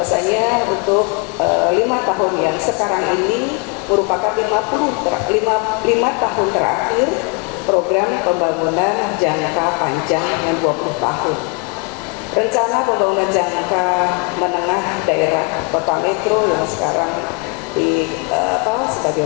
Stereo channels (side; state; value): right; quieter; 32.5 dB